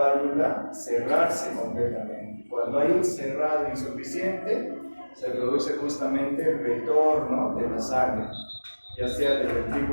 cerrarse completamente. Cuando hay un cerrado insuficiente, se produce justamente el retorno de la sangre, ya sea del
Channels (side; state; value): both; inverted; correlation -1.00